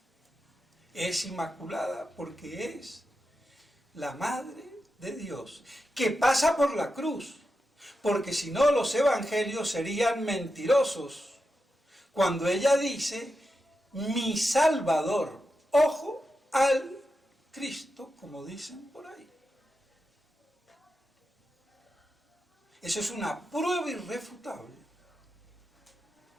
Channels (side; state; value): both; normal; correlation 0.89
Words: Es inmaculada porque es la Madre de Dios, que pasa por la cruz, porque si no los evangelios serían mentirosos, cuando ella dice, mi Salvador, ojo al Cristo, como dicen por ahí. Eso es una prueba irrefutable